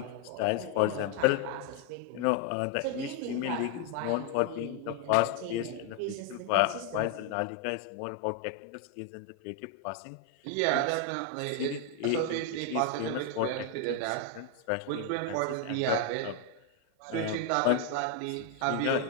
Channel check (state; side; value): different; both; correlation 0.00